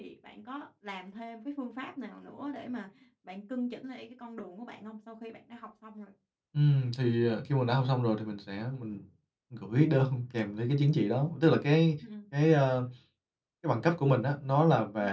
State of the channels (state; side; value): identical; both; correlation 1.00